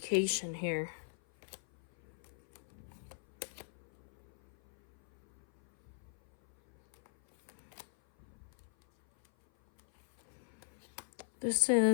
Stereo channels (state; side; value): silent; right; 51 dB below the other